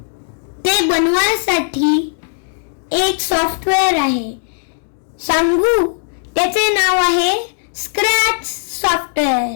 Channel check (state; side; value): silent; right; digital silence